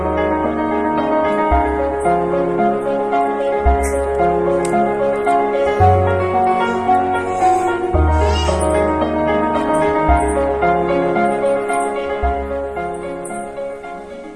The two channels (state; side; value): identical; both; correlation 1.00